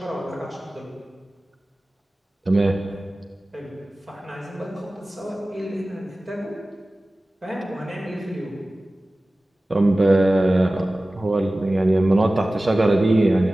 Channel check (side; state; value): both; normal; correlation 0.97